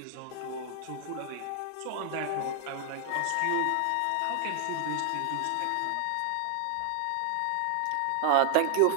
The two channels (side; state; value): both; different; correlation 0.00